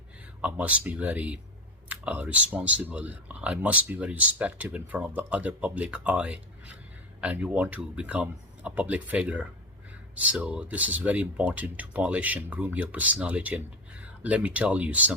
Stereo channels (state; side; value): normal; both; correlation 0.19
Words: I must be very responsible. I must be very respectful in front of the other public eye. And you want to become a public figure. So this is very important to polish and groom your personality. And let me tell you